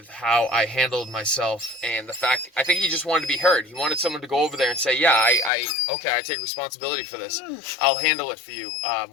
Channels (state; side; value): drops out; right; at 5.5 s